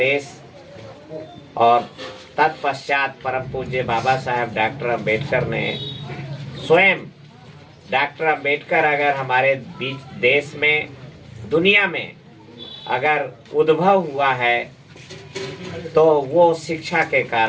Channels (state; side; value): identical; both; correlation 1.00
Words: और तत्पश्चात परम पूज्य बाबा साहेब डॉक्टर अम्बेडकर ने स्वयं, डॉक्टर अम्बेडकर अगर हमारे बीच, देश में, दुनिया में अगर उद्भव हुआ है तो वो शिक्षा के